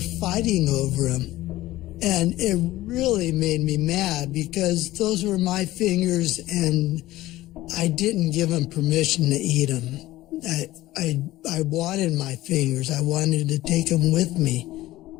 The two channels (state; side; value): quieter; right; 16.5 dB